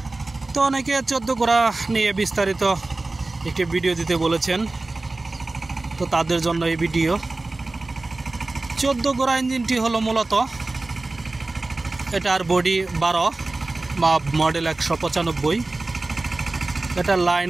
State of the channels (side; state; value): left; quieter; 3.2 dB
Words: তো অনেকে 14 গোড়া নিয়ে বিস্তারিত একটি ভিডিও দিতে বলেছেন, তো তাদের জন্য এই ভিডিও। 14 গোড়া ইঞ্জিনটি হলো মূলত এটার বডি 12 বা মডেল 195, এটা